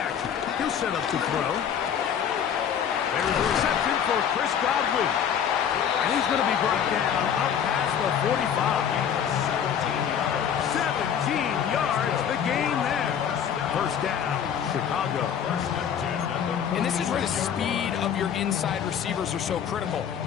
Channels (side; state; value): right; quieter; 8.4 dB